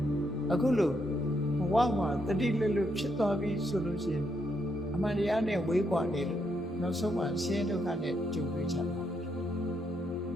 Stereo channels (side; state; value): both; normal; correlation 0.77